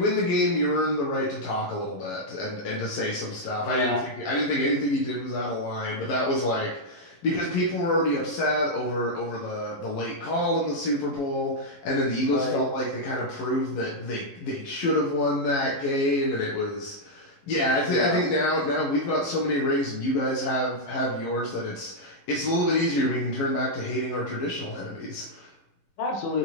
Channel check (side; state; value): right; late; 11 ms